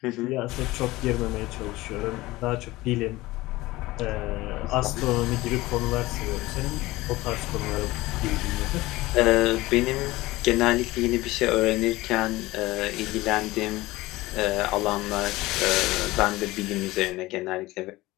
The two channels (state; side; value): quieter; right; 19.1 dB